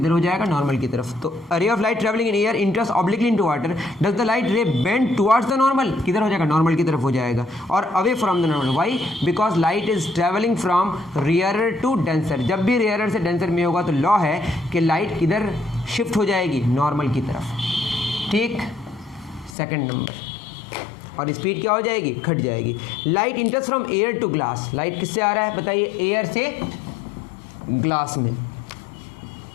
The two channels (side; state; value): right; drops out; at 19.6 s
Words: हो जाएगा? नॉर्मल की तरफ। तो ray of light travelling in air enters obliquely into water, does the light ray bend towards the normal? किधर हो जाएगा? नॉर्मल की तरफ हो जाएगा, और away from the normal. Why? Because light is travelling from rarer to denser. जब भी रेयरर से डेंसर में होगा तो लॉ है कि लाइट किधर शिफ्ट हो जाएगी? नॉर्मल की तरफ, ठीक। सेकंड नंबर, और स्पीड क्या हो जाएगी? घट जाएगी। Light enters from air to glass, light किससे आ रहा है बताइए? एयर से ग्लास में।